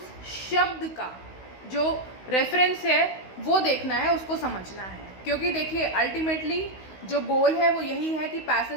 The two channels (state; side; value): late; right; 16 ms